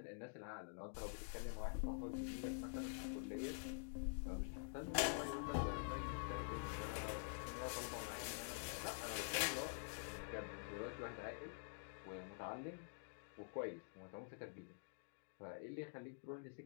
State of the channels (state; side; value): silent; right; digital silence